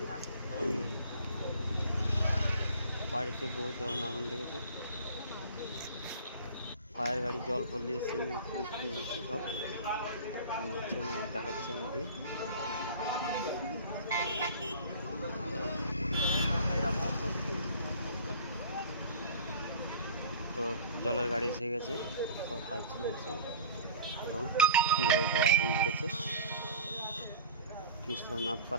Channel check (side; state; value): both; inverted; correlation -0.41